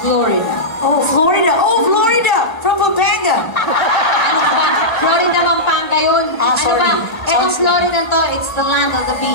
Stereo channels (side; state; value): right; late; 1.1 ms